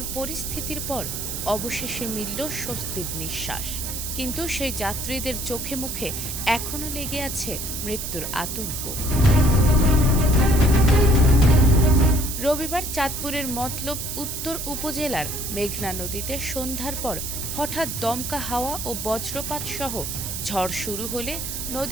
পরিস্থিতির পর অবশেষে মিলল স্বস্তির নিঃশ্বাস। কিন্তু সেই যাত্রীদের চোখে মুখে এখনও লেগে আছে মৃত্যুর আতঙ্ক। রবিবার চাঁদপুরের মতলব উত্তর উপজেলার মেঘনা নদীতে সন্ধ্যার পর হঠাৎ দমকা হাওয়া ও বজ্রপাত সহ ঝড় শুরু হলে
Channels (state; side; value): noise; right; hiss, 5 dB below the sound